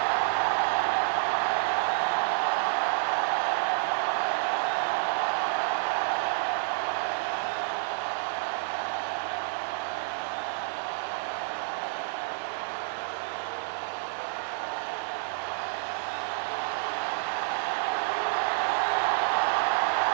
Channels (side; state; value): left; silent; digital silence